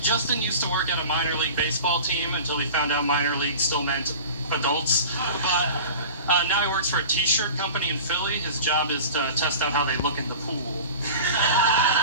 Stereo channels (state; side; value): inverted; both; correlation -0.37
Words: Justin used to work at a minor league baseball team until he found out minor league still meant adults. But now he works for a t-shirt company in Philly. His job is to test out how they look in the pool.